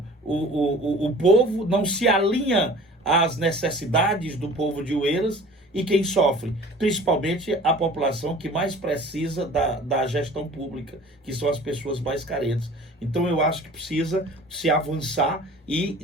o povo, não se alinha às necessidades do povo de Oeiras, e quem sofre, principalmente a população que mais precisa da gestão pública, que são as pessoas mais carentes. Então eu acho que precisa se avançar e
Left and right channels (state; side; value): normal; both; correlation 0.45